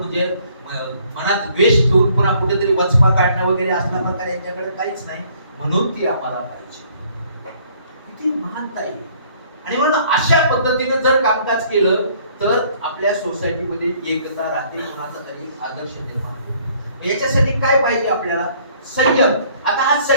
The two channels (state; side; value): inverted; both; correlation -0.61